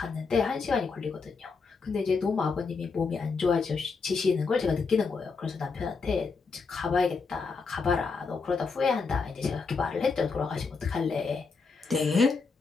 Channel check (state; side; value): quieter; right; 4.7 dB